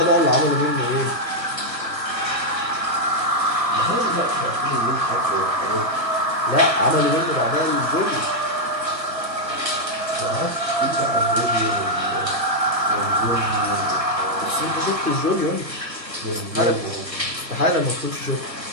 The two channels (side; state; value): left; late; 1.4 ms